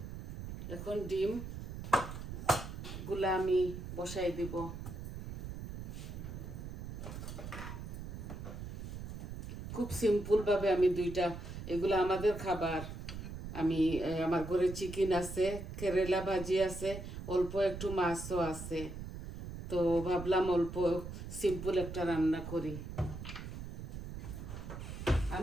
এখন ডিম গুলা আমি বসাই দিব। খুব সিম্পল ভাবে আমি এগুলো আমাদের খাবার। আমি আমার ঘরে চিকেন আছে, কেরেলা ভাজি আছে, অল্প একটু মাছও আছে। তো ভাবলাম অল্প সিম্পল একটা রান্না করি।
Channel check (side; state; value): right; noise; rumble, 8 dB below the sound